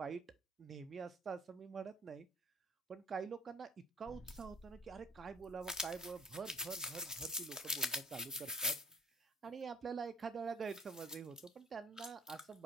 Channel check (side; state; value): both; normal; correlation 0.53